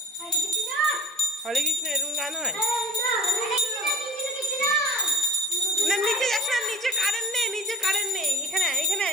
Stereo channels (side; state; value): both; normal; correlation 0.40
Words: হরে কৃষ্ণ এরকম গান হয় না? নিচে যাস না, নিচে কারেন্ট নেই, নিচে কারেন্ট নেই। এখানে এখানে